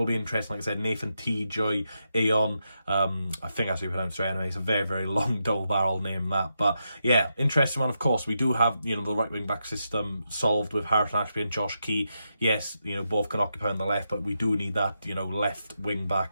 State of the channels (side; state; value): both; inverted; correlation -0.84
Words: be interesting, like I said, Tjoe-A-On, I think that's how you pronounce it anyway. It's a very long double barrel name, that. But yeah, interesting one. Of course, we do have, you know, the right wing back system solved with Harrison Ashby and Josh Key. Yes, you know, both can occupy on the left, but we do need that, you know, left wing